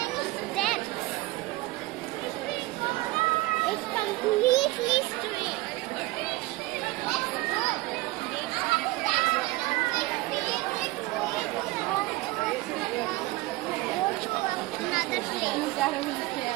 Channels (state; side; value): quieter; left; 20.0 dB